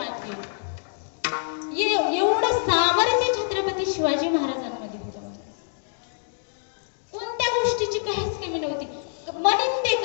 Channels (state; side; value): silent; right; digital silence